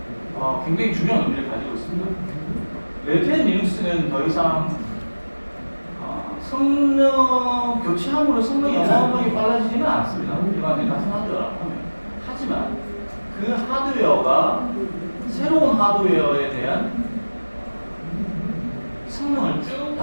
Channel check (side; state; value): both; inverted; correlation -1.00